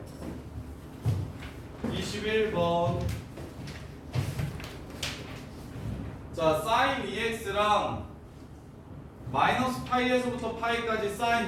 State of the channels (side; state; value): both; identical; correlation 1.00